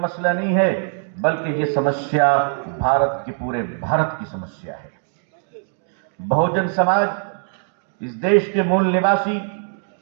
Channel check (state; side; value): silent; left; 62 dB below the other